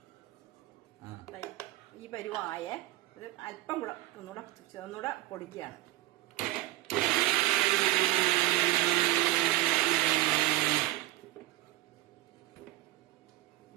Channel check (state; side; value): quieter; left; 16.7 dB